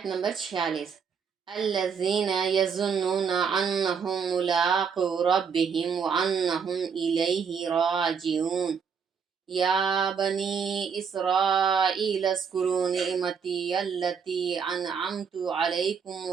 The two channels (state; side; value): quieter; left; 6.4 dB